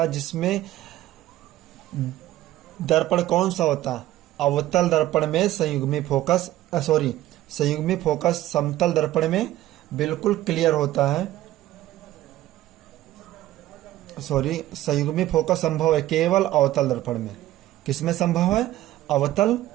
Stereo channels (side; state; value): left; quieter; 14.9 dB